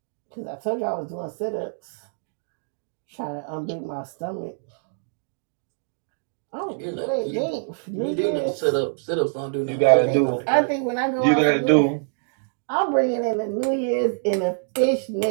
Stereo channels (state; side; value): silent; left; digital silence